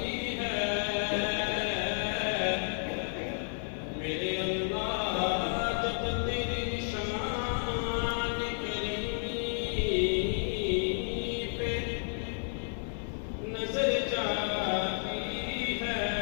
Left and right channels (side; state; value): right; silent; 57 dB below the other